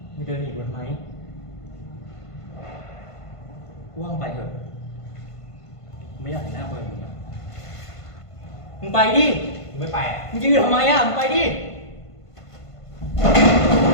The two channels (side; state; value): right; late; 1.5 ms